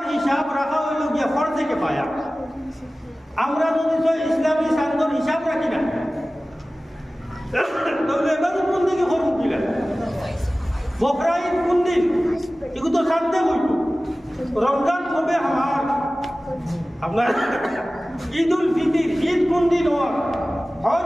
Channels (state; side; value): normal; both; correlation 0.97